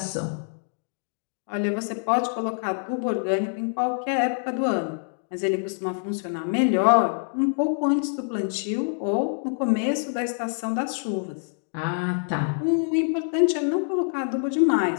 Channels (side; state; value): right; silent; digital silence